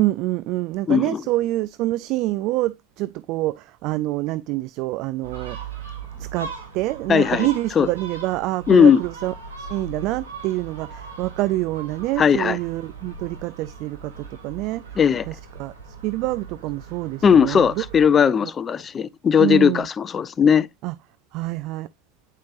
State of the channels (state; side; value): normal; both; correlation 0.55